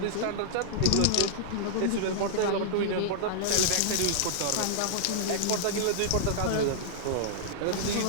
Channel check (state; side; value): different; both; correlation -0.01